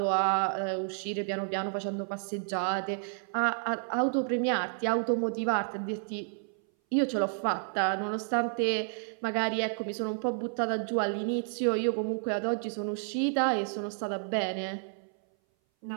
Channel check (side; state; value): left; silent; 57 dB below the other